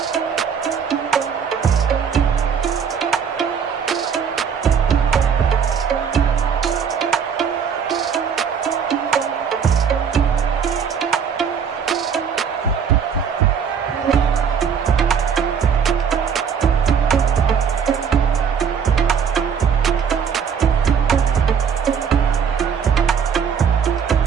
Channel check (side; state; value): left; quieter; 7.1 dB